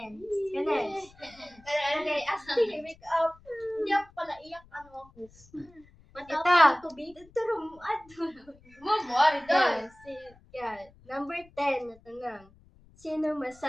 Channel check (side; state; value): left; noise; rumble, 26 dB below the sound